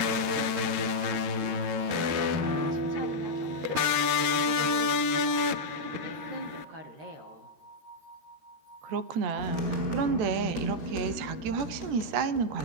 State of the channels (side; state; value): left; late; 13 ms